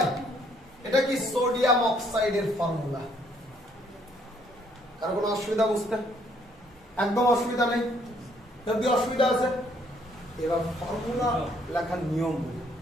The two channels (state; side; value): normal; both; correlation 0.66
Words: এটা কি? সোডিয়াম অক্সাইডের ফর্মুলা। কার কোনো অসুবিধা বুঝতে? একদম অসুবিধা নেই। যদি অসুবিধা আছে, এবার ফর্মুলা লেখার নিয়ম